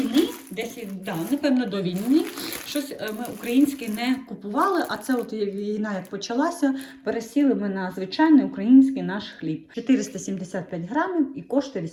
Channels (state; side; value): identical; both; correlation 1.00